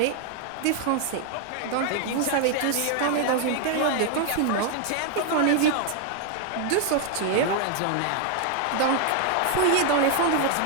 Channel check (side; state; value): both; different; correlation 0.00